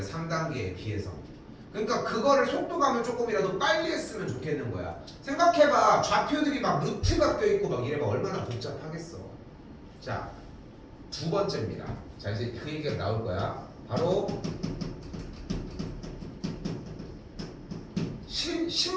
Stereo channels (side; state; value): both; identical; correlation 1.00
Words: 비해서. 그러니까 그거를 속도감을 조금이라도 빨리 했으면 좋겠는 거야. 생각해봐. 좌표들이 막 루트가 껴있고 막 이래봐. 얼마나 복잡하겠어. 자, 두 번째입니다. 자, 이제 그 얘기가 나올 거야. 바로